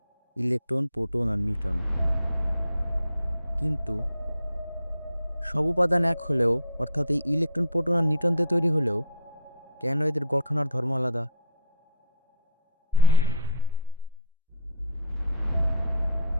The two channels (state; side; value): inverted; both; correlation -0.50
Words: ইলেকট্রন, প্রোটন আর নিউট্রন। কিন্তু সব উপাদান এক হলেও অর্থাৎ এই ইলেকট্রন, প্রোটন আর নিউট্রন দিয়ে তৈরি হলেও কেন এদের গঠন আর ধর্ম আলাদা?